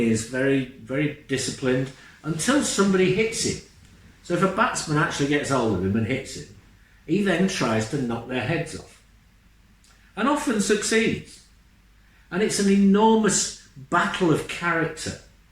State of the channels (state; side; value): identical; both; correlation 1.00